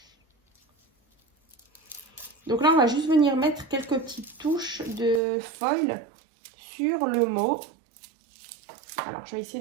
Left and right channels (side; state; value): left; drops out; at 5.2 s